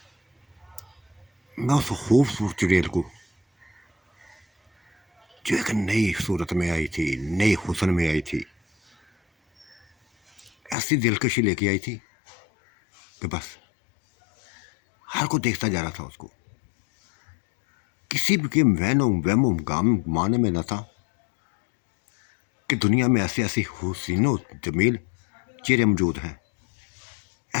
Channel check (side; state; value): right; drops out; at 10.8 s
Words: मैं उस खूबसूरत चुड़ैल को जो एक नई सूरत में आई थी, नई हुस्न में आई थी, ऐसी दिलकशी लेके आई थी कि बस हर को देखता जा रहा था उसको। किसी भी के वहमो गाम माने में न था कि दुनिया में ऐसी ऐसी हुस्नो जमील चेहरे मौजूद हैं।